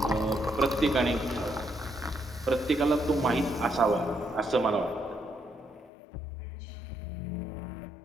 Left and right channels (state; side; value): drops out; right; at 5.9 s